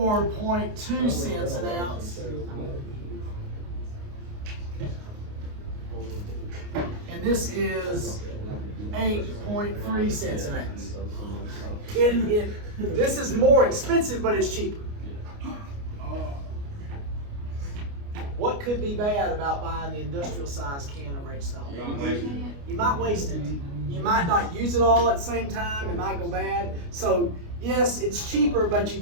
cents an ounce. And this is 8.3 cents an ounce. This is more expensive, but it's cheaper. What could be bad about buying the industrial size can of ranch style beans? You might waste it. You might not use it all at the same time. It might go bad. So yes, it's cheaper, but you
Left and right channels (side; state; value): left; late; 29 ms